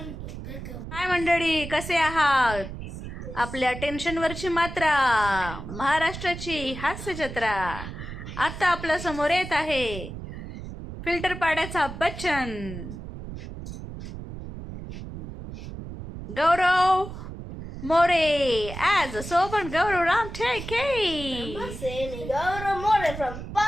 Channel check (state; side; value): noise; right; rumble, 10 dB below the sound